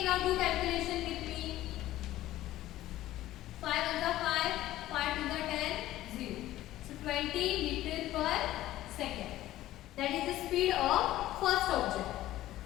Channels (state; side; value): quieter; right; 14.8 dB